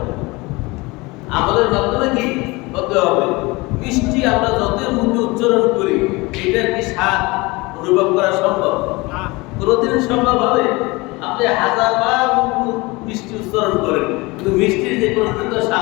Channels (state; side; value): quieter; right; 23.8 dB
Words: আমলের মাধ্যমে কি হতে হবে? মিষ্টি আমরা যতই মুখে উচ্চারণ করি, এটার কি স্বাদ অনুভব করা সম্ভব? কোনদিন সম্ভব হবে? আপনি হাজারবার মিষ্টি উচ্চারণ করেন, কিন্তু মিষ্টির যে কোনো